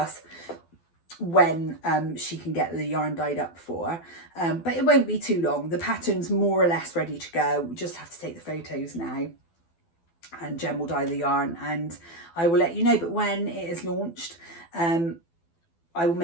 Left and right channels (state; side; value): late; right; 12 ms